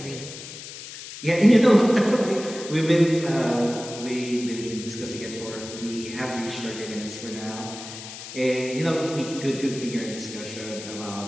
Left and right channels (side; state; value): left; noise; hiss, 12 dB below the sound